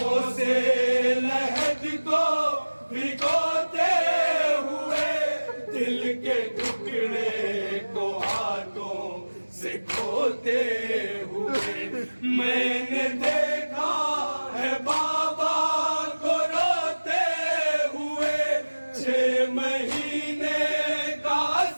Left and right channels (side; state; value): both; inverted; correlation -1.00